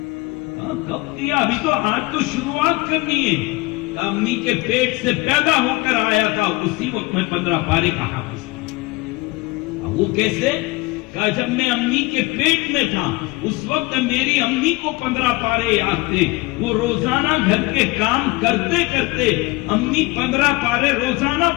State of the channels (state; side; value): quieter; right; 23.2 dB